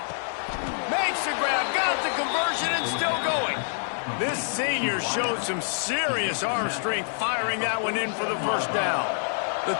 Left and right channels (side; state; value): right; silent; digital silence